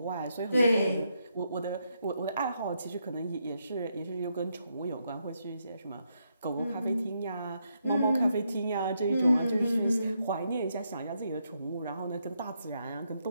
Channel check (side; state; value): both; inverted; correlation -0.79